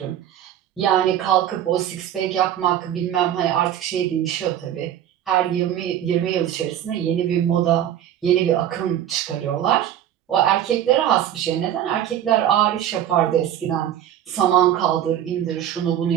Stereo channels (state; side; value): quieter; left; 10.9 dB